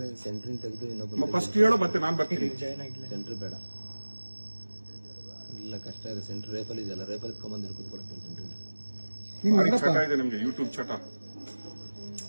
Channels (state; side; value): inverted; both; correlation -1.00